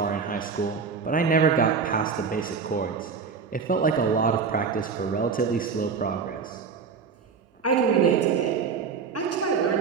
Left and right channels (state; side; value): quieter; left; 5.6 dB